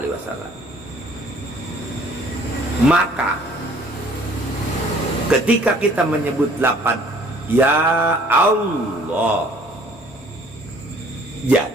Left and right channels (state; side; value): normal; both; correlation 0.56